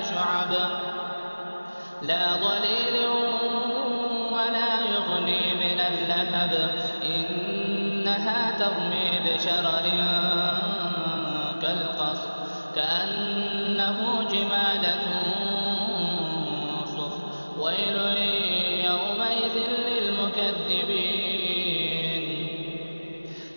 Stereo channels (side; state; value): both; inverted; correlation -1.00